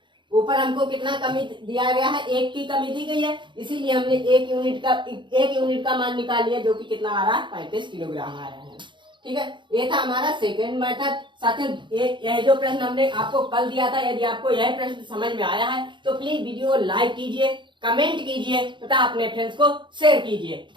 ऊपर हमको कितना कमी दिया गया है, 1 की कमी दी गई है, इसीलिए हमने 1 यूनिट का मान निकाल लिया, जो कि कितना आ रहा है, 35 किलोग्राम आ रहा है। ठीक है, ये था हमारा सेकेंड मेथड। साथियों, यह जो प्रश्न हमने आपको कल दिया था, यदि आपको यह प्रश्न समझ में आया है तो प्लीज वीडियो लाइक कीजिए, कमेंट कीजिए तथा अपने फ्रेंड्स को शेयर कीजिए।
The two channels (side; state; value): left; late; 0.23 ms